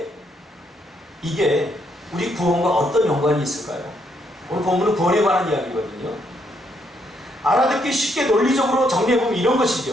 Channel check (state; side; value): normal; both; correlation 0.74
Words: 이게 우리 구원과 어떤 연관이 있을까요? 오늘 본문은 구원에 관한 이야기거든요. 알아듣기 쉽게 논리적으로 정리해보면 이런